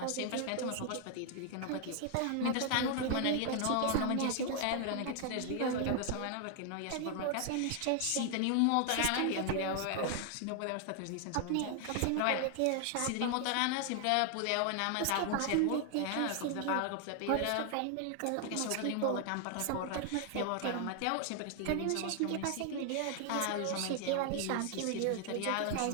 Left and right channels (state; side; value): different; both; correlation 0.00